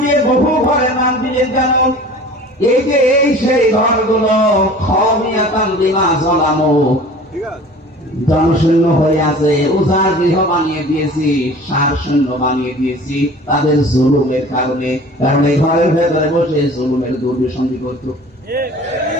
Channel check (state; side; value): normal; both; correlation 0.44